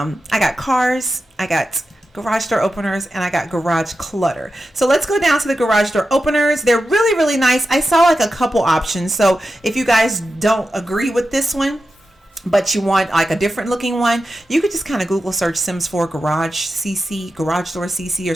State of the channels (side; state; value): both; normal; correlation 0.91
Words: got cars, I got garage door openers, and I got garage clutter. So let's go down to the garage door openers. They're really, really nice. I saw like a couple options. So if you guys don't agree with this one, but you want like a different looking one, you could just kind of Google search Sims 4 garage CC, garage door CC, or